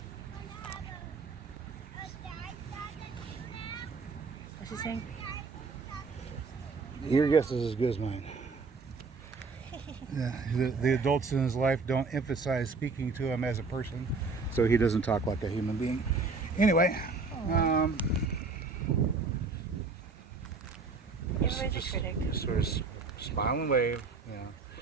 What's he saying? Your guess is as good as mine. Yeah, the adults in his life don't emphasize speaking to him as a person, so he doesn't talk like a human being. Anyway, Everybody's a critic. just sort of smile and wave. Yeah.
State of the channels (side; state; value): left; quieter; 4.4 dB